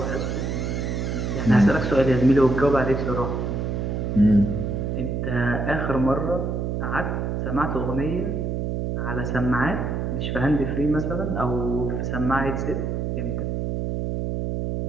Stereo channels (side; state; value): right; noise; hum, 1 dB below the sound